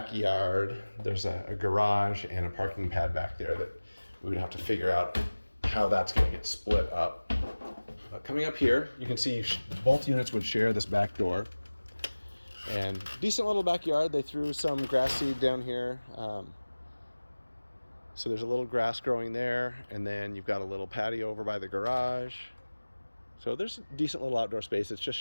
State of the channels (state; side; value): inverted; both; correlation -1.00